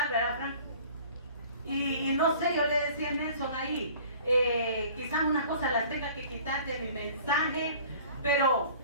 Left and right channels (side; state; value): both; inverted; correlation -0.48